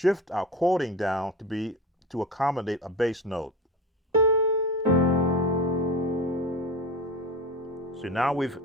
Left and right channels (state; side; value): normal; both; correlation 0.29